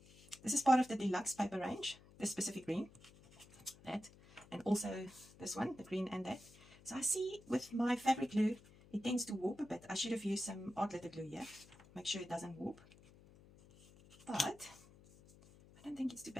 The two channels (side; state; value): left; noise; hum, 23 dB below the sound